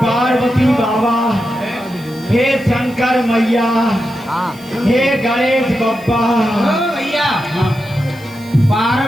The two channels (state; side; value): noise; right; hiss, 24 dB below the sound